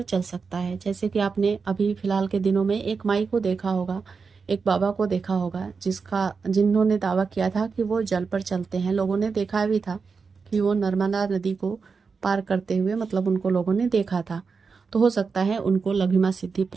चल सकता है। जैसे कि आपने अभी फिलहाल के दिनों में एक माई को देखा होगा, एक बाबा को देखा होगा, जिन्होंने दावा किया था कि वो जल पर चलते हैं। लोगों ने देखा भी था कि वो नर्मदा नदी को पार करते हुए, मतलब उनको लोगों ने देखा था। तो हो सकता है उनको लघिमा सिद्धि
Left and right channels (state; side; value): quieter; left; 5.1 dB